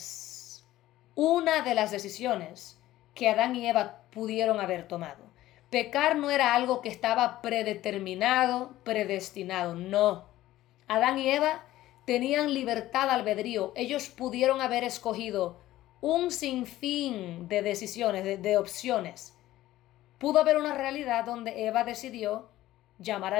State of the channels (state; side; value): quieter; right; 15.2 dB